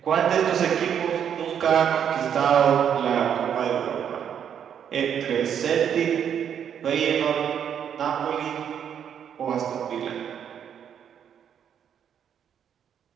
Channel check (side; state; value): left; quieter; 8.6 dB